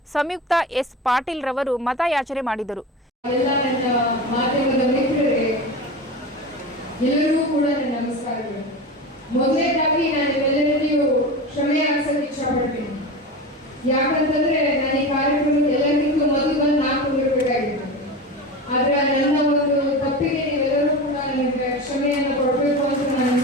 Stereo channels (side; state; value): both; normal; correlation 0.27